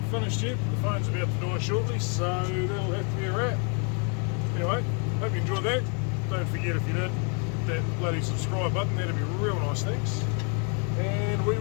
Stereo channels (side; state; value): right; quieter; 37.9 dB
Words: finished yet, but the phone's about to die shortly, so that'll have to be a wrap. Anyway, hope you enjoyed that. Don't forget, if you did, that bloody subscribe button, that'd be real nice, thanks. And we